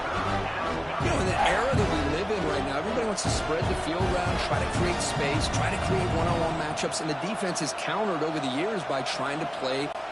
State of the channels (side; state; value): both; identical; correlation 1.00